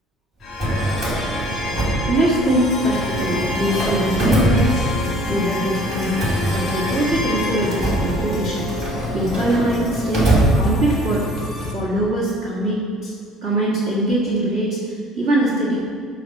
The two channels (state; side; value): normal; both; correlation 0.52